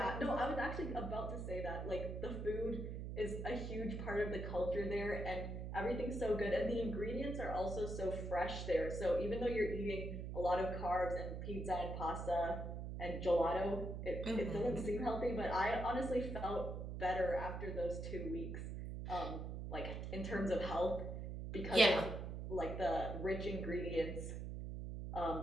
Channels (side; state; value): right; noise; hum, 5 dB below the sound